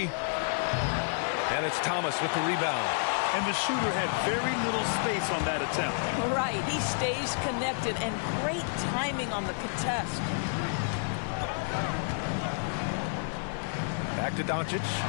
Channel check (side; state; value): right; silent; 58 dB below the other